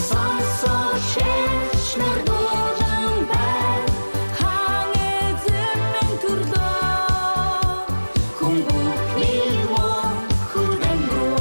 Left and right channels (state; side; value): inverted; both; correlation -1.00